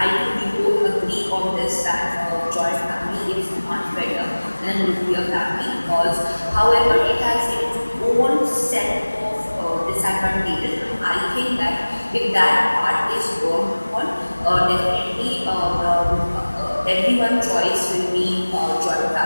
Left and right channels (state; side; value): inverted; both; correlation -1.00